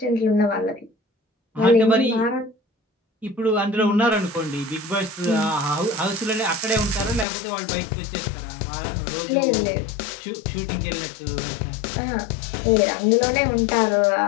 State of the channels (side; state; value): right; drops out; at 7.2 s